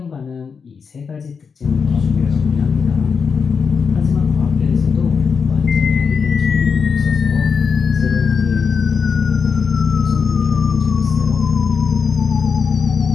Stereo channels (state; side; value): quieter; right; 5.8 dB